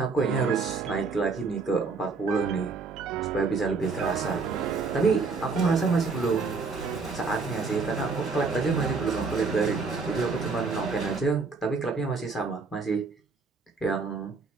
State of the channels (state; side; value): quieter; left; 4.4 dB